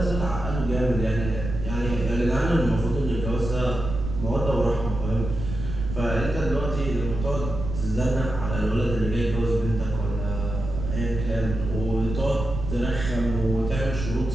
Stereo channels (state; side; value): noise; right; rumble, 6 dB below the sound